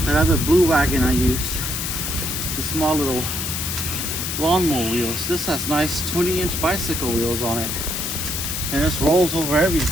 other blue wagon I used. The small little lawnmower wheels. This has nice 20-inch bicycle wheels on it, and this rolls over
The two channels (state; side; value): noise; left; hiss, 3 dB below the sound